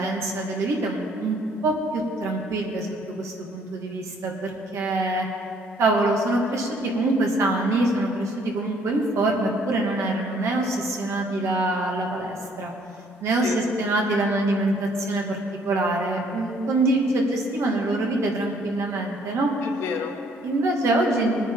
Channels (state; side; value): normal; both; correlation 0.63